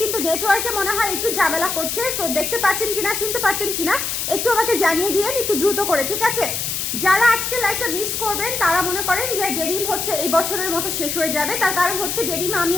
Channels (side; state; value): left; noise; hiss, 2 dB below the sound